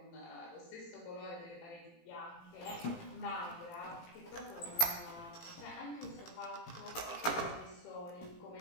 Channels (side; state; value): right; late; 17 ms